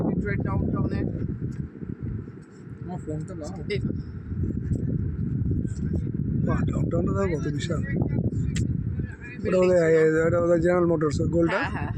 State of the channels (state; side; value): identical; both; correlation 1.00